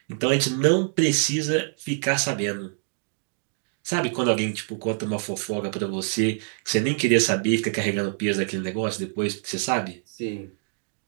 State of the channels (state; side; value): silent; left; 61 dB below the other